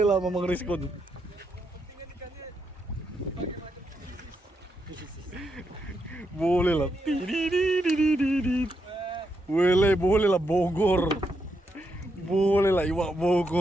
Mamang Rizkun. Boleh lah. Boleh lah Bogor. Boleh lah Iwak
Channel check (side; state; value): both; normal; correlation 0.81